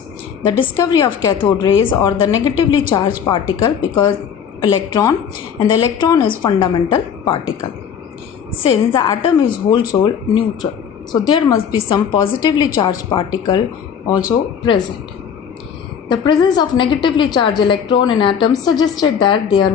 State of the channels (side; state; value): right; quieter; 7.7 dB